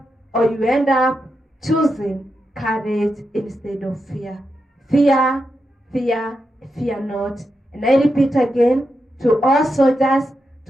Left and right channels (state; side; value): normal; both; correlation 0.86